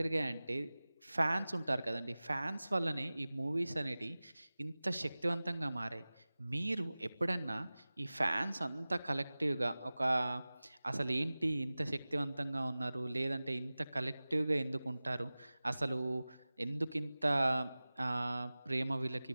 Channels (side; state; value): both; inverted; correlation -0.98